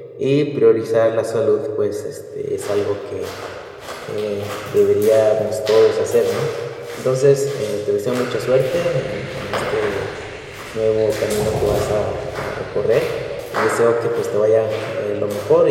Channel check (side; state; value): both; identical; correlation 1.00